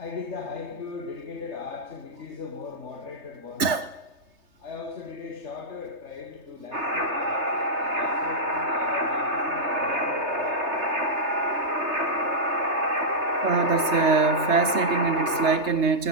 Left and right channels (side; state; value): left; late; 3.3 ms